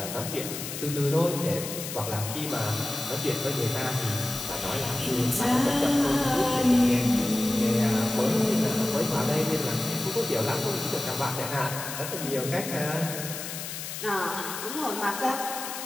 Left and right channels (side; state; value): left; noise; hiss, 7 dB below the sound